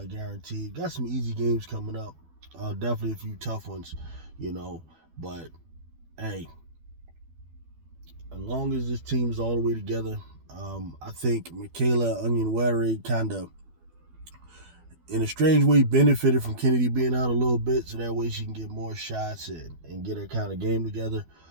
guarantee it. Got some easy games coming up. Definitely a few tough ones. But hey, as long as this team is all the way together, I think Michaela Onyenwere kind of, in a strange way, benefited from Kennedy being out a little bit, so that way she can get more shots and get her kind of game together.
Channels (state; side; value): late; left; 12 ms